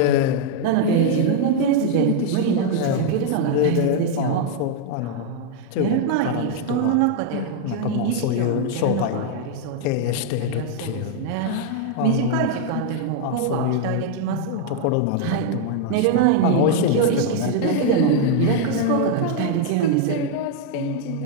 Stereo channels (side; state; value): both; different; correlation 0.00